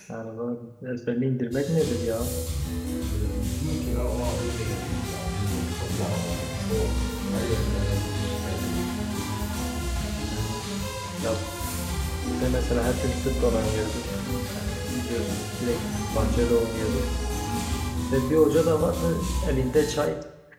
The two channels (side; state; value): both; identical; correlation 1.00